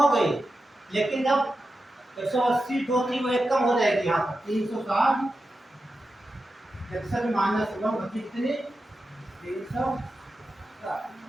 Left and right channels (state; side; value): normal; both; correlation 0.91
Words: गई, लेकिन जब 180 जो थी वो एक कम हो जाएगी, यहाँ पर 360 -1 बची कितनी, 360।